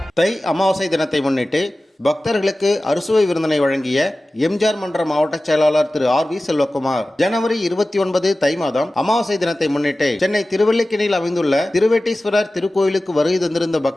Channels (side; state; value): both; normal; correlation 0.96